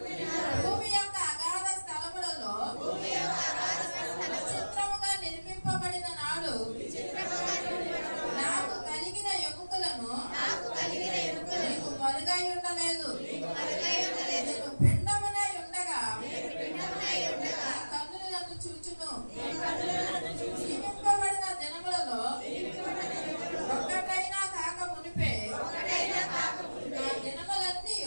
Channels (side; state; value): both; inverted; correlation -1.00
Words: భూమి యొక్క అగాధ స్థలములలో విచిత్రముగా నిర్మింపబడిన నాడు నాకు కలిగిన ఎముకలను నీకు మరుగై ఉండలేదు. నేను పిండమునై ఉండగా నీ కన్నులు నన్ను చూచును. జీవింపబడిన దినములలో ఒక్కటైనా కాక మునిపే నా దినములన్నీ